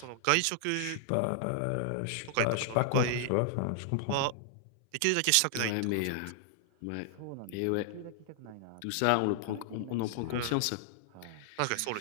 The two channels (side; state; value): both; different; correlation -0.01